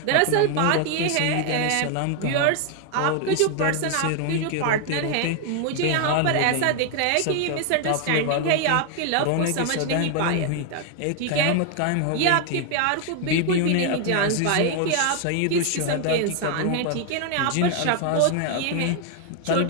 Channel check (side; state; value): both; different; correlation 0.00